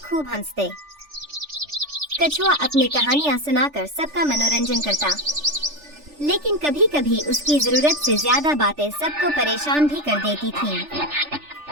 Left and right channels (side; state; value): left; late; 3.4 ms